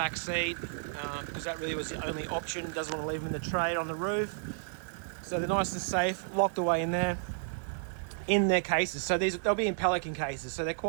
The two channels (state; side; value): silent; left; 56 dB below the other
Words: seat because that really was the only option. He doesn't want to leave them in the trade on the roof, so they're nice and safe, locked away in there in their cases. So they'll be in Pelican cases, so they're